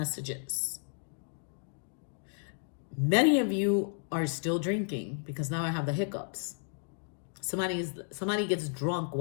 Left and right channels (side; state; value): right; silent; 56 dB below the other